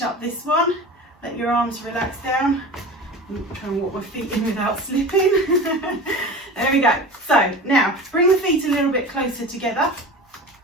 up this one. Let your arms relax down. I'm trying to walk my feet in without slipping. There we go. So now bring the feet a little bit closer together,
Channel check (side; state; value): both; normal; correlation 0.34